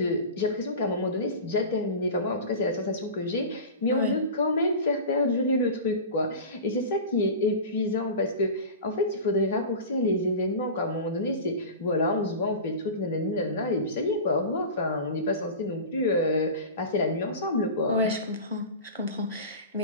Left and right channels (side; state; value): both; inverted; correlation -0.31